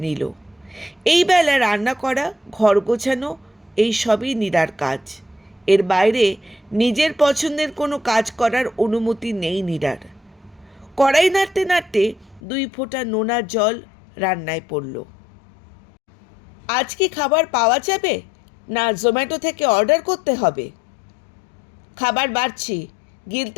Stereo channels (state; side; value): drops out; right; at 12.4 s